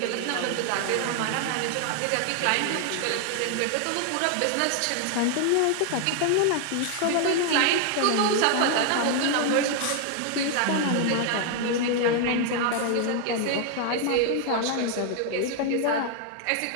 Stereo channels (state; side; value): different; both; correlation 0.00